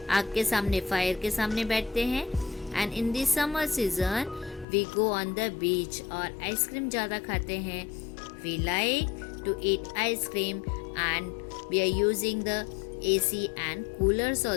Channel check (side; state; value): right; drops out; at 4.7 s